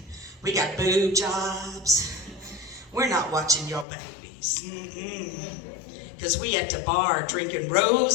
we got boob jobs. We're not watching your babies. Because we at the bar drinking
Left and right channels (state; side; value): drops out; right; at 3.9 s